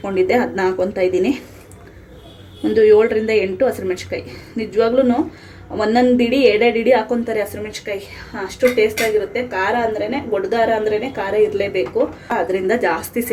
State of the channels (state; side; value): identical; both; correlation 1.00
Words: ಅದನ್ನ ಹಾಕ್ಕೊತಾ ಇದ್ದೀನಿ. ಒಂದು 7ರಿಂದ 8 ಹಸಿಮೆಣ್ಸಿಕಾಯಿ. ನಿಜವಾಗ್ಲೂ ಒಂದೊಂದು ಇಡಿ 2 ಇಡಿ ಹಾಕ್ಕೊತಾರೆ ಹಸಿಮೆಣ್ಸಿಕಾಯಿ, ಅಷ್ಟು ಟೇಸ್ಟಾಗಿರುತ್ತೆ. ಖಾರ ಅಂದ್ರೇ, ಗುಡ್ಗಾರ ಅಂದ್ರೇ ಖಾರ ಇರಲೇಬೇಕು, ಅದರಿಂದ ಜಾಸ್ತಿ